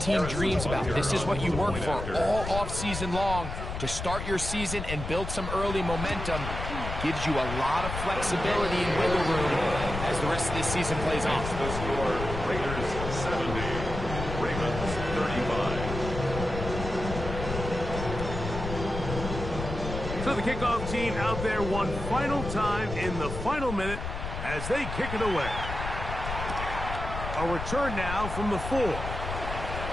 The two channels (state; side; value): noise; left; rumble, 6 dB below the sound